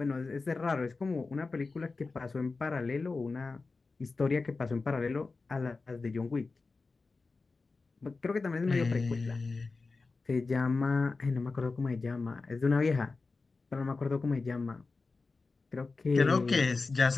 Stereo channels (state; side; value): quieter; right; 3.9 dB